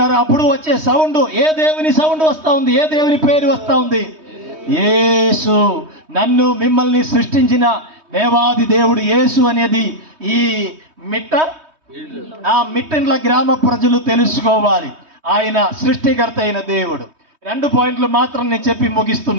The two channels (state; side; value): late; left; 3.2 ms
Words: అప్పుడు వచ్చే సౌండ్ ఏ దేవుని సౌండ్ వస్తూ ఉంది? ఏ దేవుని పేరు వస్తూ ఉంది? యేసు. నన్ను మిమ్మల్ని సృష్టించిన దేవాది దేవుడు యేసు అనేది ఈ మిట్టండ్ల గ్రామ ప్రజలు తెలుసుకోవాలి. ఆయన సృష్టికర్త అయిన దేవుడు. 2 పాయింట్లు మాత్రం నేను చెప్పి